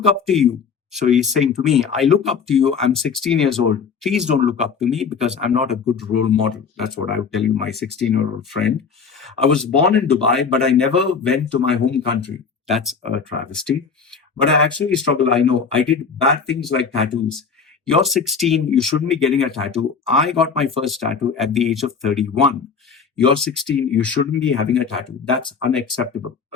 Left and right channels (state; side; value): quieter; right; 5.8 dB